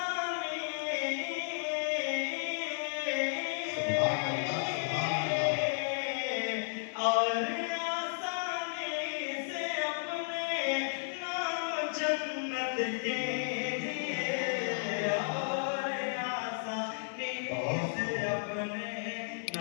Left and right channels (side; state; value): right; silent; 55 dB below the other